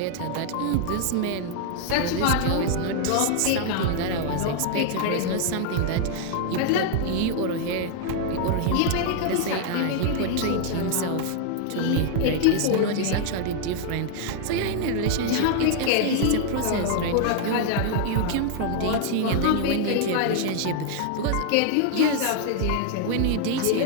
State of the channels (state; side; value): different; both; correlation 0.00